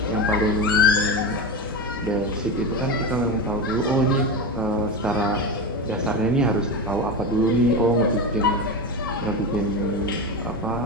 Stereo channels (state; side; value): normal; both; correlation 0.20